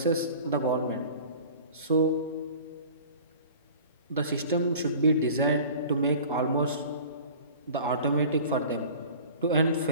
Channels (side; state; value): both; inverted; correlation -0.43